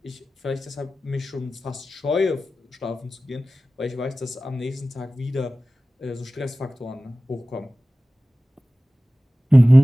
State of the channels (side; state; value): both; normal; correlation 0.96